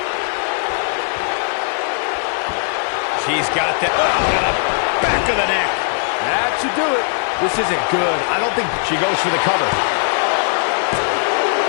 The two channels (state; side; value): silent; right; 65 dB below the other